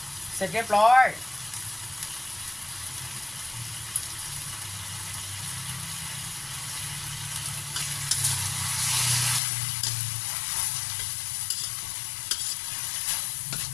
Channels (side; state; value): right; drops out; at 9.4 s